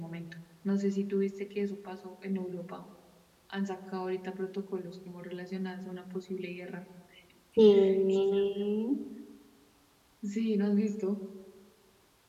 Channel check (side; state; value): both; identical; correlation 1.00